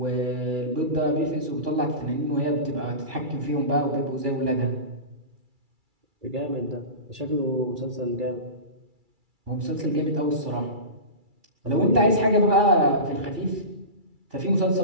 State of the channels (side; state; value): left; late; 2.3 ms